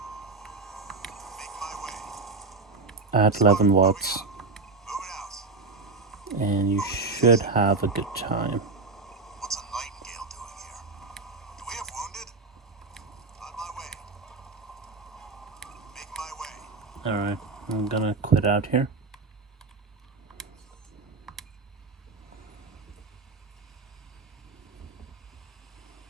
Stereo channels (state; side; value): quieter; left; 3.9 dB